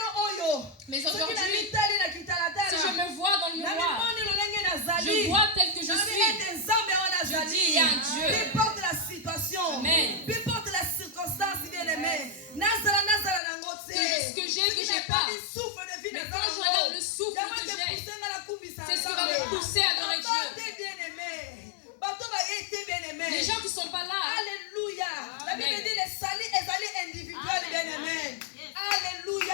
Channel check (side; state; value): right; drops out; at 13.4 s